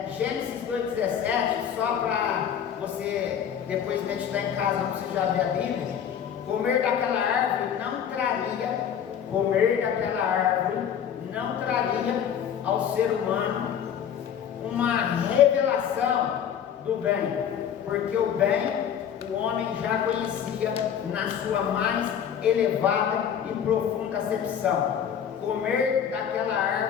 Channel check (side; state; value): right; quieter; 8.6 dB